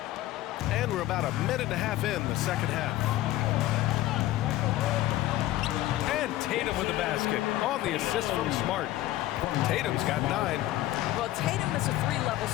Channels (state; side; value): quieter; right; 15.5 dB